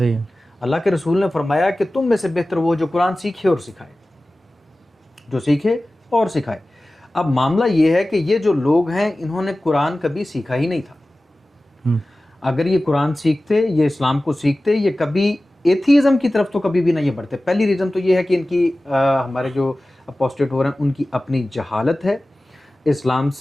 ہی ہے. اللہ کے رسول نے فرمایا کہ تم میں سے بہتر وہ جو قرآن سیکھے اور سکھائے, جو سیکھے اور سکھائے. اب معاملہ یہ ہے کہ یہ جو لوگ ہیں انہوں نے قرآن کبھی سیکھا ہی نہیں تھا. اگر یہ قرآن سیکھتے, یہ اسلام کو سیکھتے, یہ کبھی ایتھیزم کی طرف تو کبھی بھی نہ یہ بڑھتے. پہلی ریزن تو یہ ہے کہ ان کی ہمارے جو اپوسٹیٹ ہو رہے ہیں ان کی اپنی جہالت ہے, اسلام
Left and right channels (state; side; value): normal; both; correlation 0.96